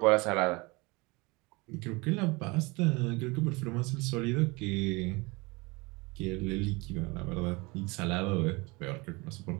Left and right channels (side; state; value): left; quieter; 25.6 dB